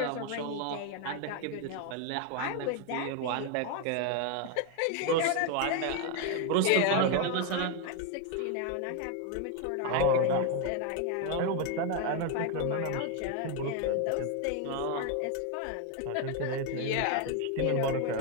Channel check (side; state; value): both; different; correlation 0.01